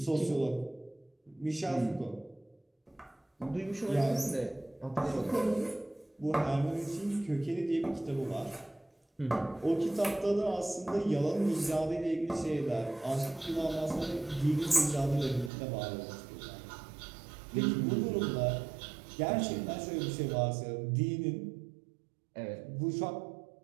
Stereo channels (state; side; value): drops out; left; at 15.5 s